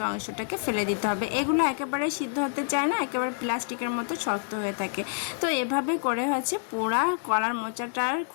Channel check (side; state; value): right; silent; digital silence